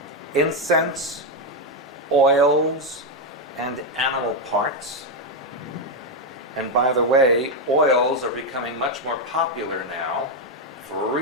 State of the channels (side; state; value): both; normal; correlation 0.04